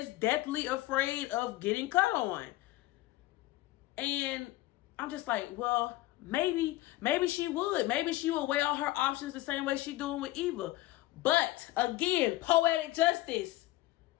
deathly afraid of getting cut on. And I'm just like, well, maybe she would. Maybe she would weigh all her options the same way she doing with Eva. But again, poetic justice.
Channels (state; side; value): quieter; right; 17.4 dB